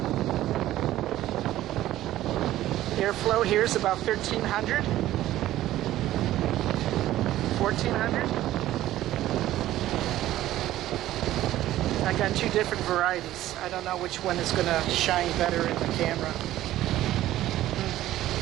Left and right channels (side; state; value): left; quieter; 14.2 dB